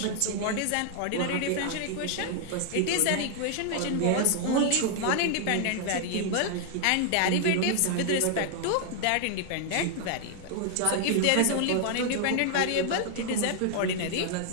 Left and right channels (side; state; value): both; different; correlation 0.00